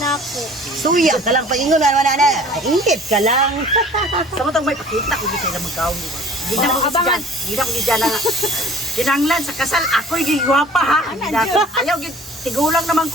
ako. Suya ka lang pagingon na. Ingit ka lang. Samantang may pakita ko sila magkaon. Hindi na ko Abangan. gidyan. Hindi na ko gidyan na. Kinanglan sa kasal, ako'y gigwapa ha. Hindi na ako. Ayaw, tigulang naman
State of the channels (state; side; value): normal; both; correlation 0.48